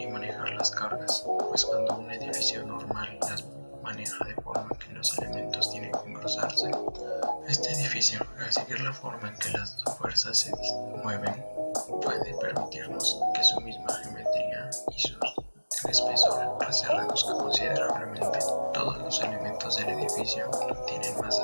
y manejar las cargas, pues cuando un edificio normal las maneja de forma que los elementos tienen que engrosarse, este edificio, al seguir la forma en que las fuerzas se mueven, puede permitirnos que su misma geometría y su espesor se reduzca considerablemente. Todos los elementos del edificio tienen más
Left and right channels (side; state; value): both; inverted; correlation -1.00